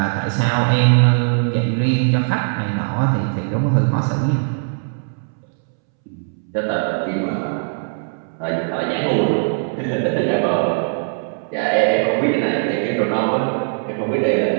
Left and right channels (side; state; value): left; silent; 66 dB below the other